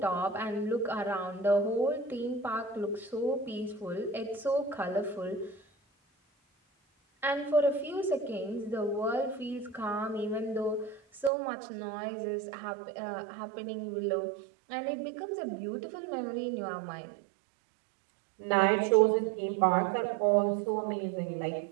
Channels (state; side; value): drops out; left; at 11.3 s